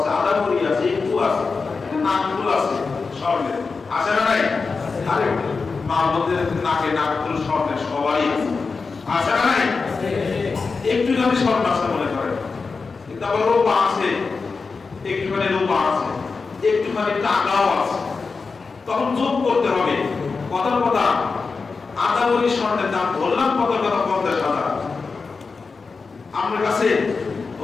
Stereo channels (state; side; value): quieter; right; 4.6 dB